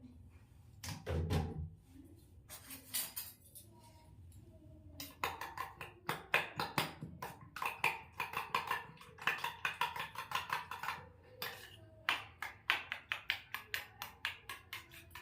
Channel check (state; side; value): identical; both; correlation 1.00